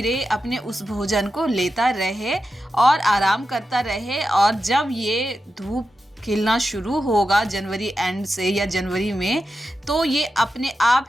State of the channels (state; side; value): normal; both; correlation 0.90